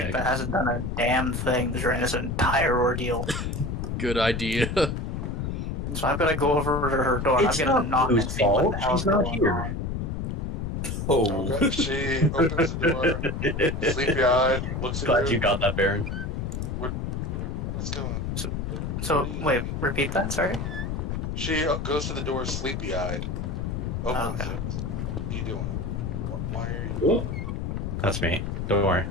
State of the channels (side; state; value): left; noise; rumble, 3 dB below the sound